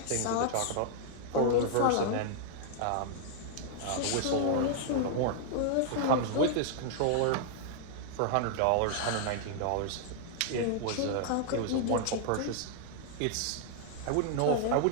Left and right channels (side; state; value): both; different; correlation -0.01